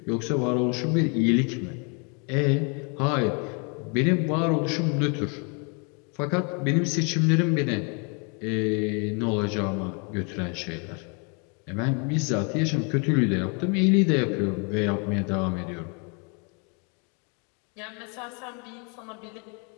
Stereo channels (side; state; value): right; quieter; 35.5 dB